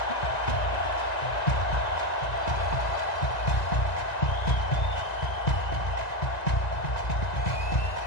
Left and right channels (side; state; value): right; late; 1.9 ms